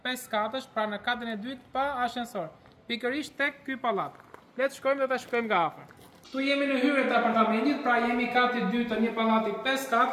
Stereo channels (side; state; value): both; identical; correlation 1.00